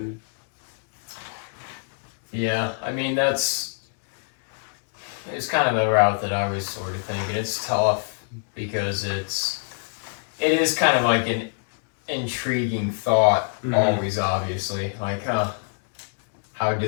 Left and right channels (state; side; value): silent; right; digital silence